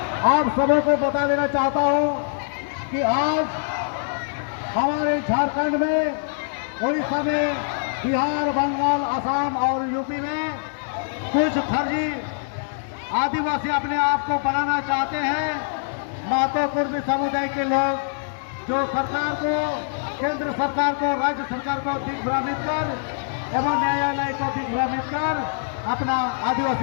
आप सबों को बता देना चाहता हूं कि आज हमारे झारखंड में, उड़ीसा में, बिहार, बंगाल, असम और यूपी में कुछ फर्जी आदिवासी अपने आप को बनाना चाहते हैं। महतो कुर्मी समुदाय के लोग जो सरकार को, केंद्र सरकार को, राज्य सरकार को दिग्भ्रमित कर एवं न्यायालय को दिग्भ्रमित कर अपना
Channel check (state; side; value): silent; right; 58 dB below the other